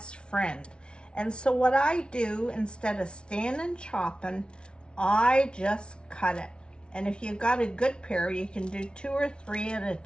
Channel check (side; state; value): right; late; 0.056 ms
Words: friend. And so what I do, instead of standing chopping, I just cut it. And if you've got a good pair, you can do 2 or 3 at a